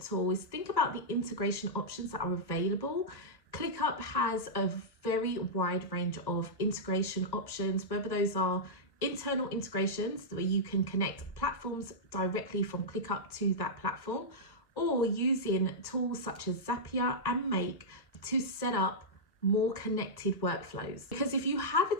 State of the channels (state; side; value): late; right; 1.1 ms